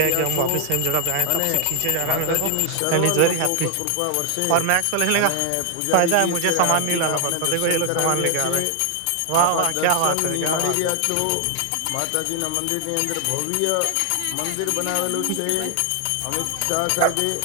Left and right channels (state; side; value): different; both; correlation 0.00